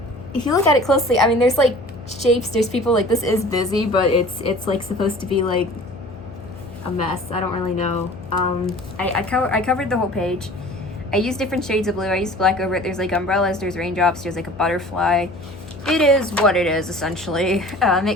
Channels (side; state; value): left; noise; hum, 17 dB below the sound